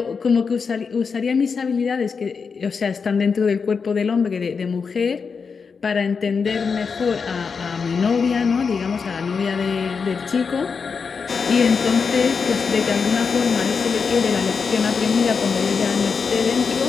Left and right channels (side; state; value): right; quieter; 5.5 dB